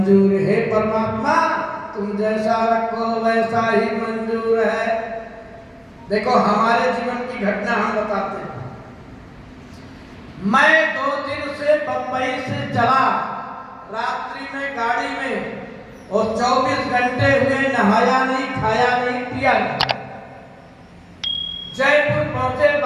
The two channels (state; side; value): identical; both; correlation 1.00